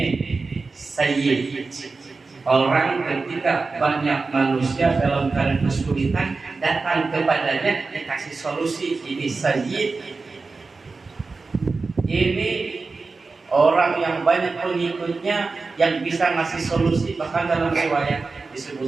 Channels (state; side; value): quieter; left; 4.1 dB